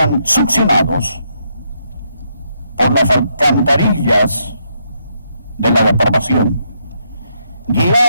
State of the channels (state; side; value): inverted; both; correlation -0.77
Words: succionados por las alcantarillas de la depravación,